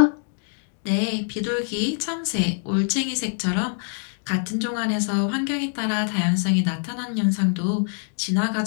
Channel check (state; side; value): silent; right; 61 dB below the other